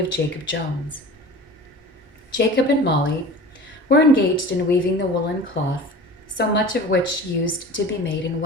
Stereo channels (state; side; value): normal; both; correlation 0.37